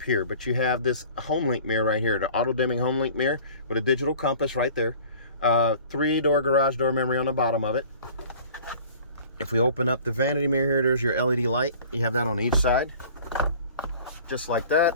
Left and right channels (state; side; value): inverted; both; correlation -0.47